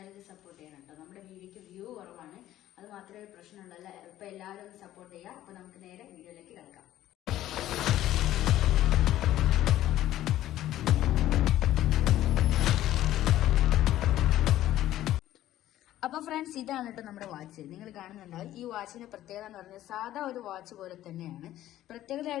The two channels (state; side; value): quieter; right; 13.6 dB